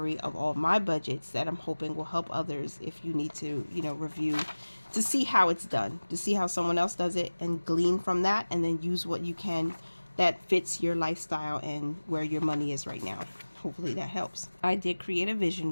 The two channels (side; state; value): both; inverted; correlation -1.00